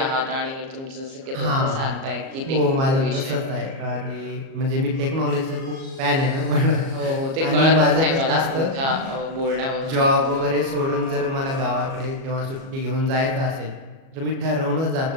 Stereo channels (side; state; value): left; late; 37 ms